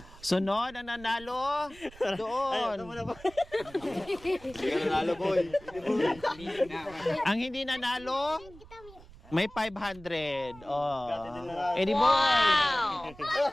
Sunod ang nanalo doon. Ito muna po. Hindi ka nanalo, boy. Ang hindi nanalo, may 500. Oh. Eddie Boy.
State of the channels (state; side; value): noise; right; rumble, 20 dB below the sound